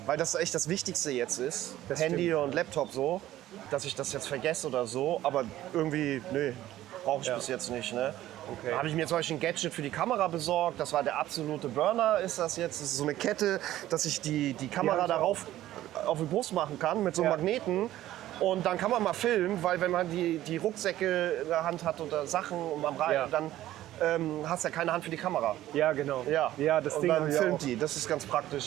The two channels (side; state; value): left; quieter; 14.1 dB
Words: weil das echt das Wichtigste jetzt ist, Das Handy stimmt. und Laptop so, dass ich das jetzt vergesse oder so. Aber irgendwie, nee, brauche ich bis jetzt nicht. Ne? Okay. Da habe ich mir zum Beispiel ein Gadget für die Kamera besorgt. Das war der absolute Burner, ist das jetzt. Das ist so eine Kette, dass ich die Kamera Ja, darauf auf die Brust machen kann mit so einem Ja. Magneten. Und dann kann man mal filmen, weil wenn man die Rucksäcke in der Hand hat oder Sachen und am Ja. dann hast du ja keine Hand für die Kamera. Ja, genau. Ja, Ja, das und Ding dann habe ich filmt auch. die. Das ist ganz